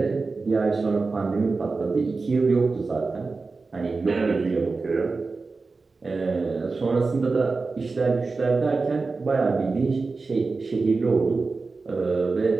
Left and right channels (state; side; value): quieter; left; 4.0 dB